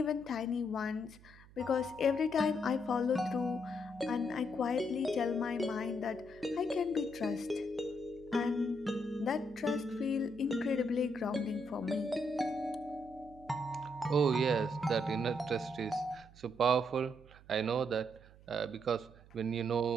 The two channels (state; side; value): noise; right; hum, 23 dB below the sound